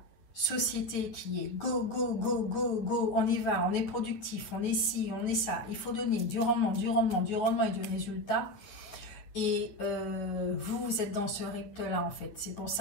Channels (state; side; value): late; right; 9.6 ms